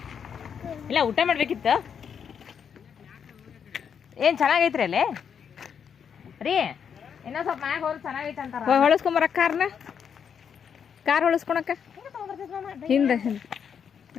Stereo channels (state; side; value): quieter; right; 7.4 dB